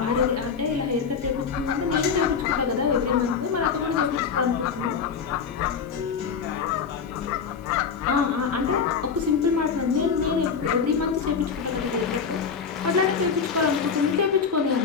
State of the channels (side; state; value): right; quieter; 6.1 dB